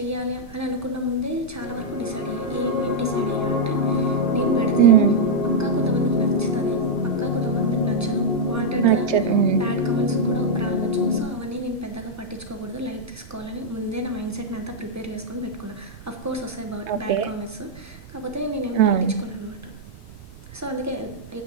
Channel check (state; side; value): noise; right; rumble, 19 dB below the sound